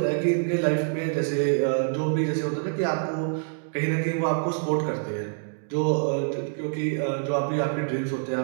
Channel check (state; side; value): silent; left; digital silence